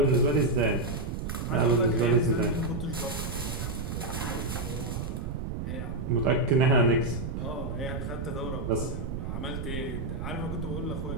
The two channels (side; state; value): right; noise; rumble, 4 dB below the sound